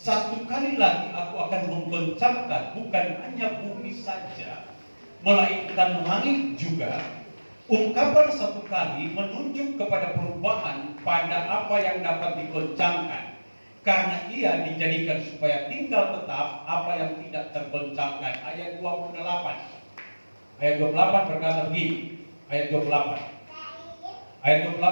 kali lagi aku akan menggoncangkan bukan hanya bumi saja, melainkan langit juga. Ungkapan satu kali menunjuk kepada perubahan pada apa yang dapat digoncangkan, karena ia dijadikan supaya tinggal tetap apa yang tidak tergoncangkan. Ayat 28. Ayat 28 berkata begini. Ayat 28. Ayat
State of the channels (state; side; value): inverted; both; correlation -1.00